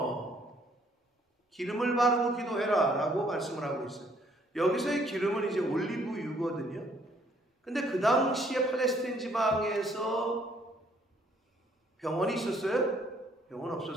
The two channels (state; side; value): normal; both; correlation 0.65